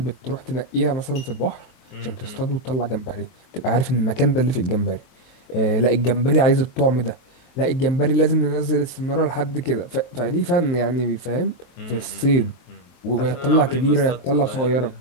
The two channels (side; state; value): right; late; 23 ms